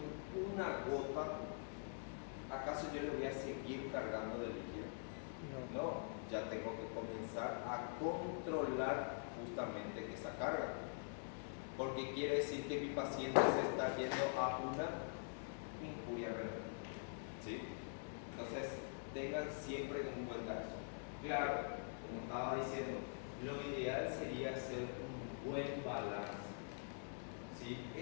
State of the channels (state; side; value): silent; right; digital silence